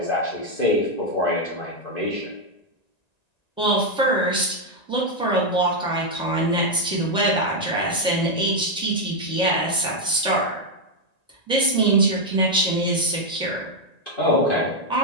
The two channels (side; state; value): right; late; 1.9 ms